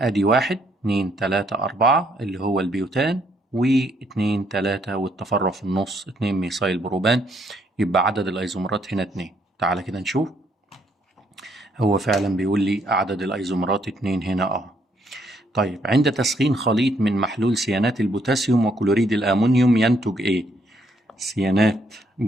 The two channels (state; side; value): normal; both; correlation 0.71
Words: 1 2 3 4 اللي هو البيوتان، و2 3 والتفرع في النص 2 ميثايل بروبان، يبقى عدد الايزومرات هنا 2. تعالى كده نشوف، هو فعلا بيقول لي عدد الايزومرات 2 هنا طيب عند تسخين خليط من محلول سيانات البوتاسيوم وكلوريد الأمونيوم ينتج إيه؟ سيانات